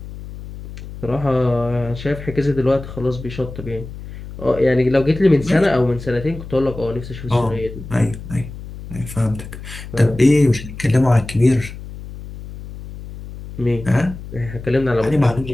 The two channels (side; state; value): left; noise; hum, 12 dB below the sound